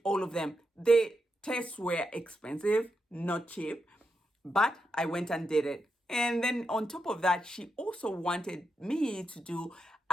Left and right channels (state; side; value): normal; both; correlation 0.85